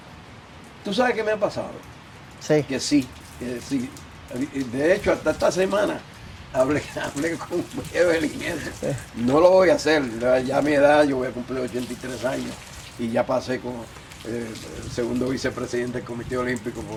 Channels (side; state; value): both; identical; correlation 1.00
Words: ¿Tú sabes qué me ha pasado? Sí. Que sí. De hecho, hasta esta semana hablé con Evelyn eso. No lo voy a hacer, ya a mi edad, yo voy a cumplir 83 años y ya pasé con el segundo vicepresidente del Comité Olímpico